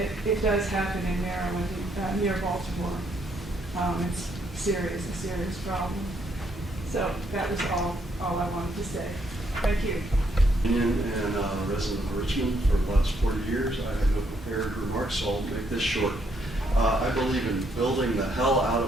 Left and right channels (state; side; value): normal; both; correlation 0.73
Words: It does happen in Maryland, near Baltimore. It's a serious problem. So that was all I wanted to say. Thank you. And a resident of Richmond for the last 40 years. I have no prepared remarks, so I'll make this short. I believe in building the hell out